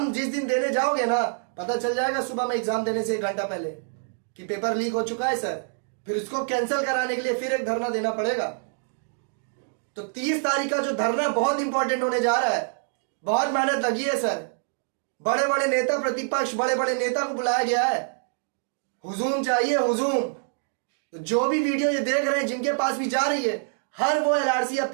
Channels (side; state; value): left; silent; digital silence